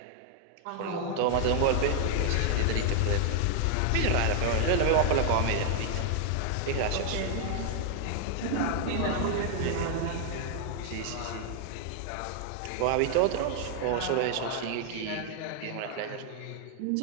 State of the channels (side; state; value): both; different; correlation 0.00